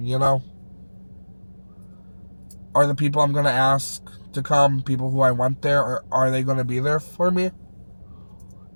you know? Are the people I'm going to ask to come people who I want there, or are they going to be there for me?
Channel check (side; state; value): both; inverted; correlation -1.00